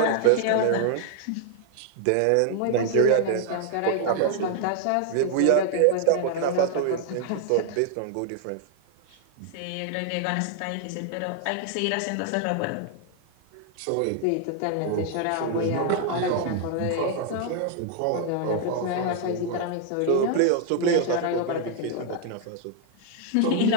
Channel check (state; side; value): different; both; correlation 0.00